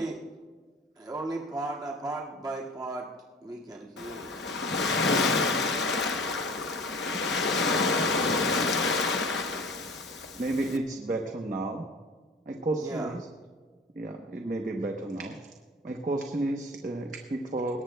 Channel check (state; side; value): normal; both; correlation 0.42